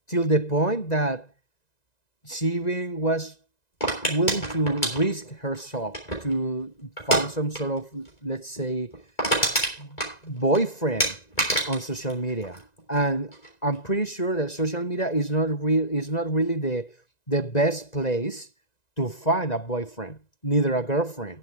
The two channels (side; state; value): right; late; 1.9 ms